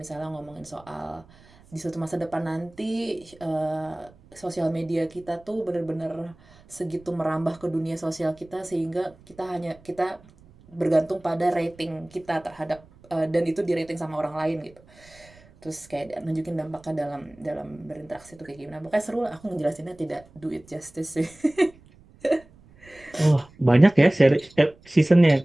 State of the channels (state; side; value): noise; right; rumble, 26 dB below the sound